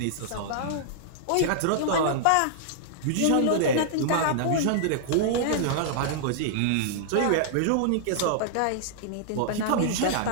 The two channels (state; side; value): different; both; correlation -0.01